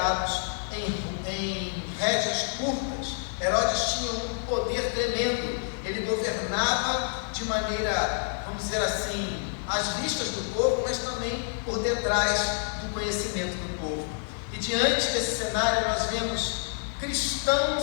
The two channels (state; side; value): silent; right; 58 dB below the other